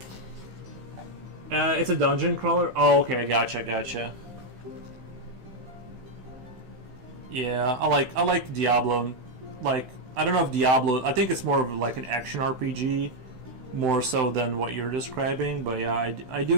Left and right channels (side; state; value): left; late; 16 ms